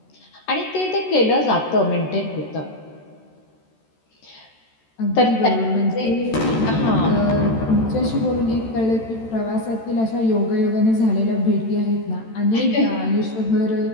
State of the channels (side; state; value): right; late; 13 ms